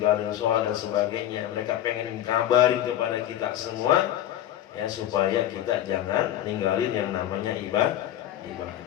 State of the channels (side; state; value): right; quieter; 12.1 dB